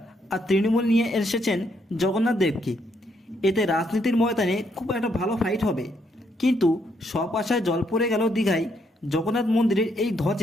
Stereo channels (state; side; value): normal; both; correlation 0.74